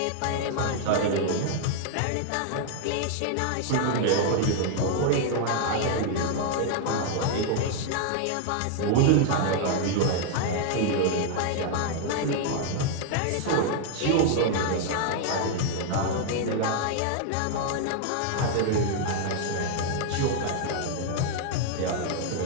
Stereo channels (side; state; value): both; different; correlation 0.00